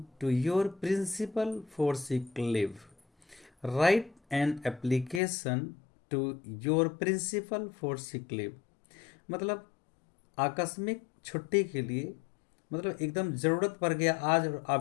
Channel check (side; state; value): right; drops out; at 5.2 s